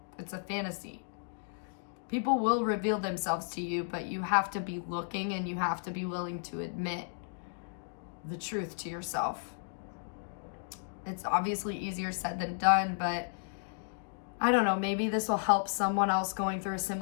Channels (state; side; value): silent; right; digital silence